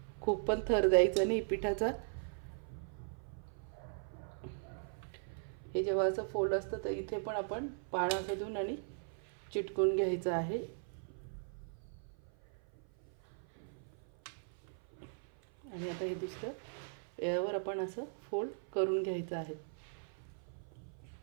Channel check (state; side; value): silent; left; 52 dB below the other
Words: खूप पण थर द्यायचा नाही पिठाचा. हे जेव्हा असं फोल्ड असतं तर इथे पण आपण पान असं देऊन आणि चिटकून घ्यायचं आहे. आणि आता हे दुसरं यावर आपण असं फोल्ड करून घ्यायचं आहे.